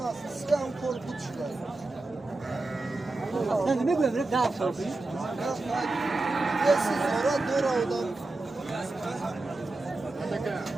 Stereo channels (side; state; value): left; quieter; 3.1 dB